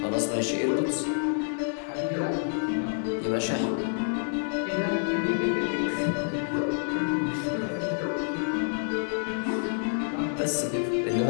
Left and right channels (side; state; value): right; silent; digital silence